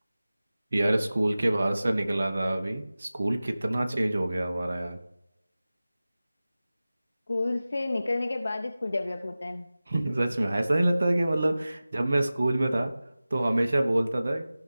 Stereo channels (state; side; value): inverted; both; correlation -0.96